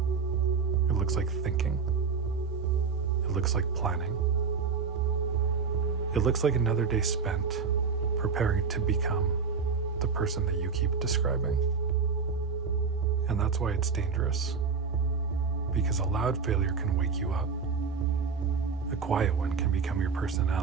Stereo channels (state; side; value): quieter; left; 5.5 dB